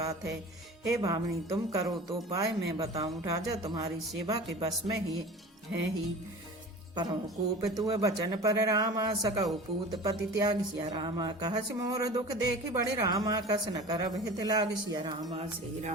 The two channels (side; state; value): both; normal; correlation 0.37